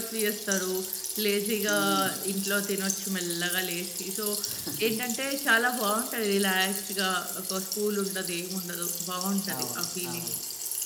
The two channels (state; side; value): identical; both; correlation 1.00